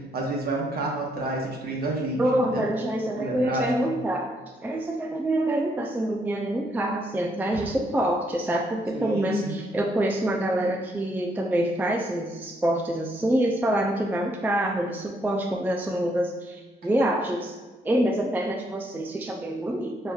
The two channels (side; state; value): both; normal; correlation 0.74